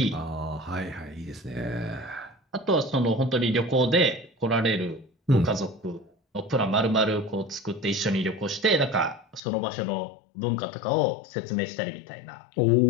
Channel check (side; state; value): right; drops out; at 9.4 s